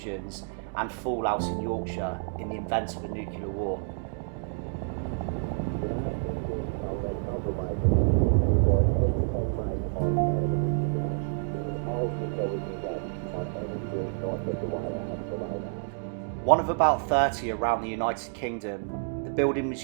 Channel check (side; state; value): left; silent; digital silence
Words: and fallout in Yorkshire in the event of a nuclear war. One of about 30 around the United Kingdom, the building was